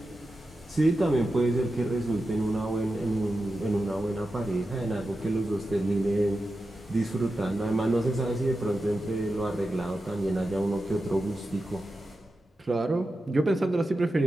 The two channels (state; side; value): normal; both; correlation 0.91